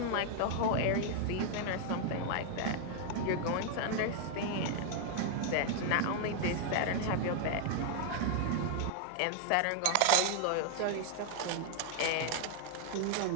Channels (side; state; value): both; different; correlation 0.00